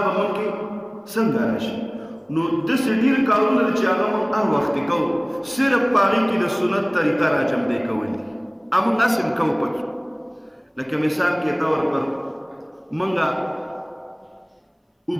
مونږ کې څنګه راشي. نو داسې ډېر کارونه دي چې هغه مونږ هر وخت کوو، صرف په هغې کې د سنت طریقه راجمدی کول دي. همونږ هسې هم کوو پکې. لکه مثال کې طور پر مونږ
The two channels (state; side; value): identical; both; correlation 1.00